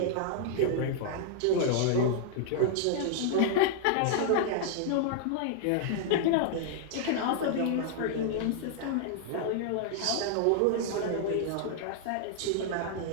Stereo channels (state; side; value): different; both; correlation -0.01